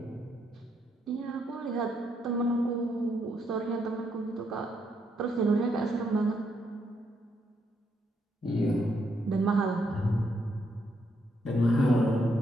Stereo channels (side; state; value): both; normal; correlation 0.76